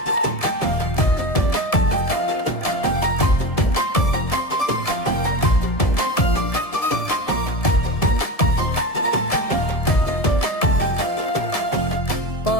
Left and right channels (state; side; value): late; right; 1.7 ms